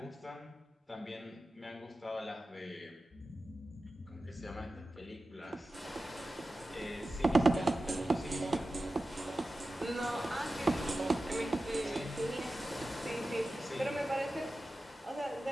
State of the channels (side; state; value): both; normal; correlation 0.94